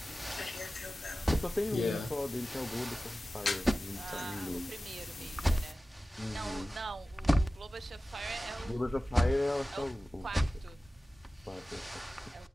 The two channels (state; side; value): normal; both; correlation 0.96